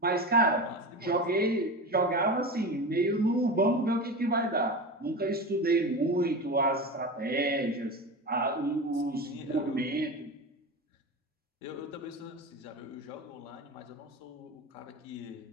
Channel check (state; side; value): normal; both; correlation 0.26